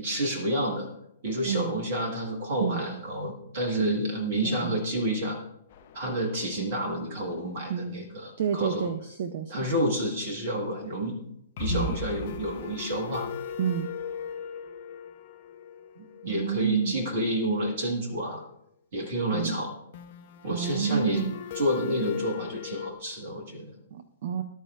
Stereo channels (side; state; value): both; inverted; correlation -0.46